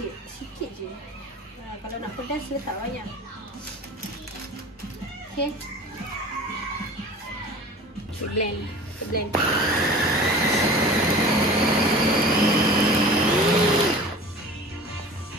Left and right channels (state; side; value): normal; both; correlation 0.40